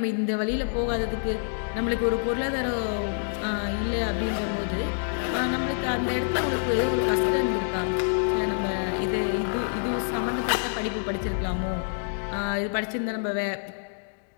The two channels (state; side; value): silent; right; digital silence